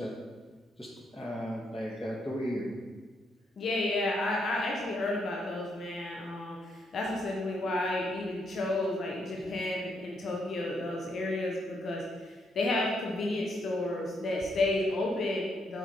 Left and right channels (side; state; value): both; normal; correlation 0.76